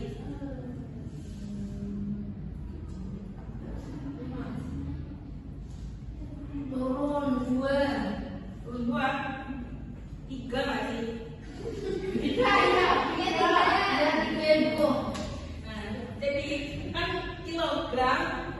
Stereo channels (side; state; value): both; identical; correlation 1.00